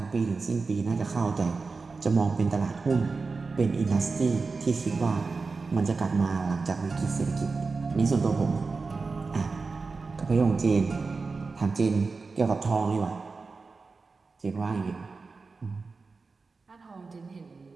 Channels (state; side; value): quieter; left; 4.2 dB